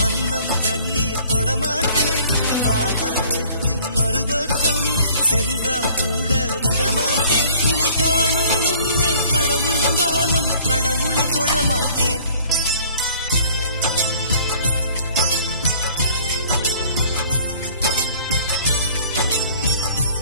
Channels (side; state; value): both; inverted; correlation -0.53